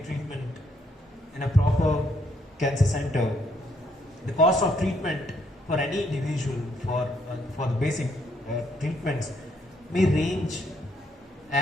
treatment in a proper cancer center, the cost of treatment for any individual for the basic treatments may range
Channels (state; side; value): normal; both; correlation 0.71